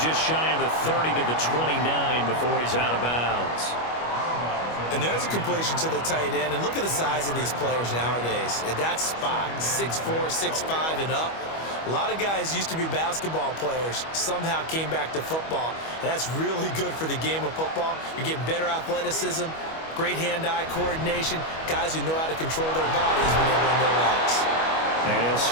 shy of the 30 to the 29 before he's out of bounds. And there's a completion to the tight end. And look at the size of these players nowadays. At that spot, 6'4", 6'5", and up. A lot of guys used to be basketball players, somehow came back to football. And that's really good for the game of football. You're getting better athleticism, great hand-eye coordination, guys who know how to control their bodies when they run their routes. And he'll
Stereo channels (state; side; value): late; right; 25 ms